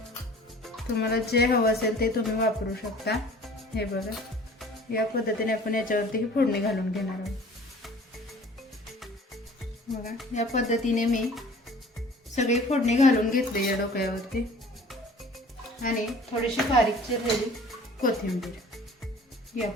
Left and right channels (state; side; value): normal; both; correlation 0.48